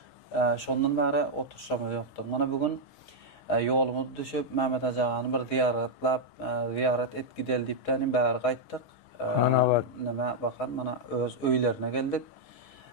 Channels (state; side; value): late; right; 6.3 ms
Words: Şondan beri oturuşamız yoktu. Mana bugün yolumuz düşüp Mehmet Acağanı bir ziyaret et gidel deyipten beri qayttık. Mana var. Nima bakın mana öz öylerine geldik.